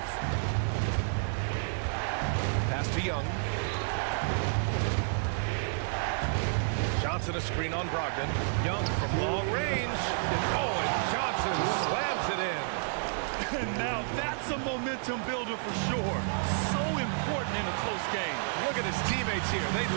Pass to Young. Johnson a screen on Brogdon. Young from long range. Oh, and Johnson slams it in. And now that's a momentum builder for sure. So important in a close game. Look at his teammates here. They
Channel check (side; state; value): left; silent; 57 dB below the other